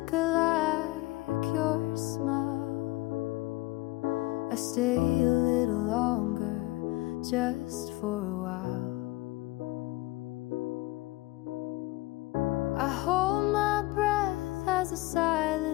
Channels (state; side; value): quieter; right; 20.4 dB